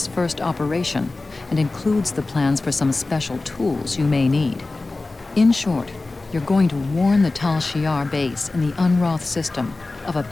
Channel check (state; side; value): quieter; right; 3.3 dB